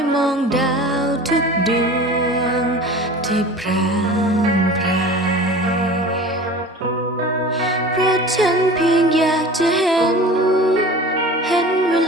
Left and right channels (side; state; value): both; normal; correlation 0.39